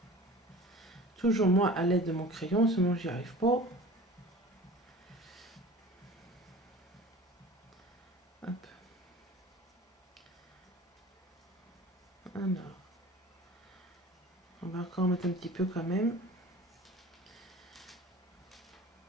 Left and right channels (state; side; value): normal; both; correlation 0.41